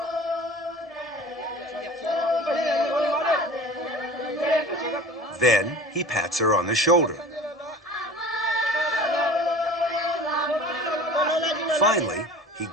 Then he pats her on the shoulder. Finally, he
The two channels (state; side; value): normal; both; correlation 0.41